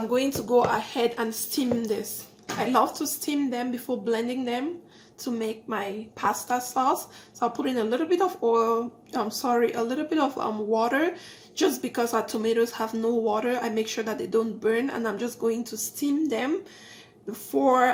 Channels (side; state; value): both; identical; correlation 1.00